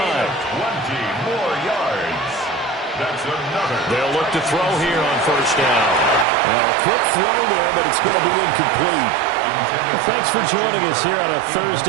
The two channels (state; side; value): drops out; left; at 6.2 s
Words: more yards. That's another. They'll look to throw here on 1st down. A quick throw there, but it's going to be incomplete. Well, thanks for joining us here on a